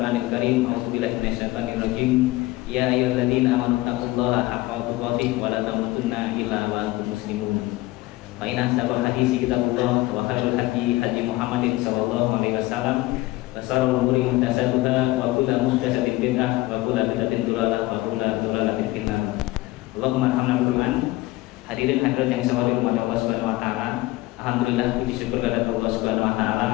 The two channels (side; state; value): right; quieter; 19.4 dB